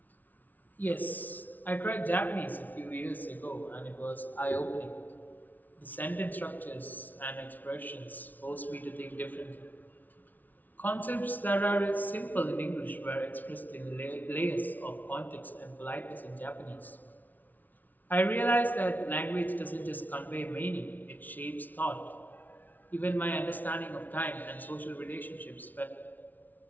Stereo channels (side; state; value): right; late; 0.081 ms